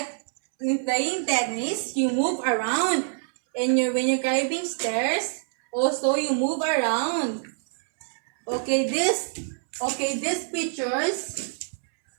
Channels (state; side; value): silent; left; 61 dB below the other